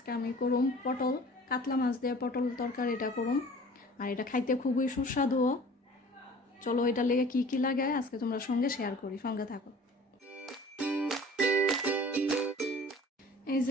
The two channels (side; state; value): both; normal; correlation 0.46